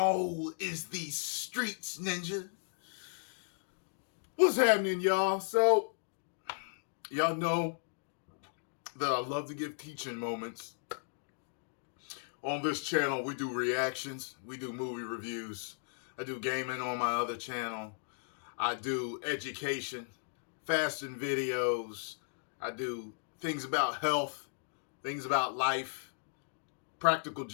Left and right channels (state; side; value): silent; right; digital silence